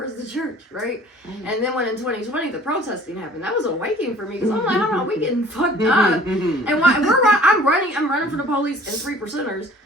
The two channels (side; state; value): both; normal; correlation 0.50